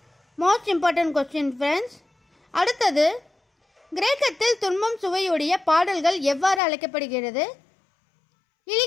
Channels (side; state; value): right; drops out; at 6.6 s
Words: Most important question friends. அடுத்தது, கிரேக்கத்தில் துன்பம் சுவையுடைய பாடல்கள் எவ்வாறு அழைக்கப்படுகிறது?